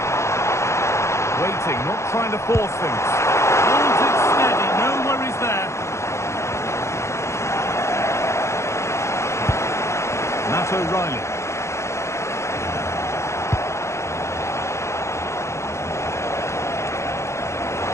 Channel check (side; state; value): right; late; 0.14 ms